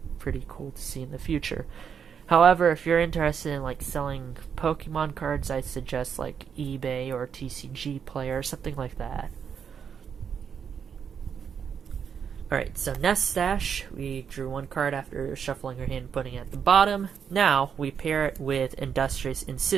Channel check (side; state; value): left; quieter; 7.3 dB